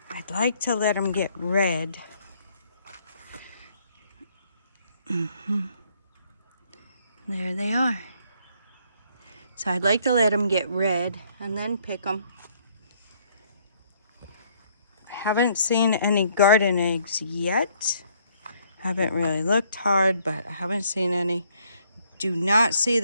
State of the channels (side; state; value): both; inverted; correlation -0.66